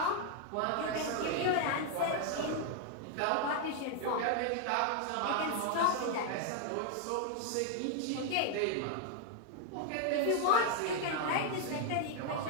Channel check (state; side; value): different; both; correlation 0.00